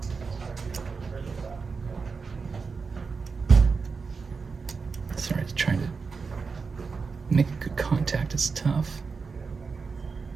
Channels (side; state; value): left; quieter; 4.9 dB